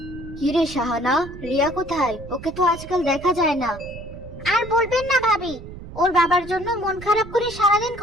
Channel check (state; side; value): noise; right; rumble, 14 dB below the sound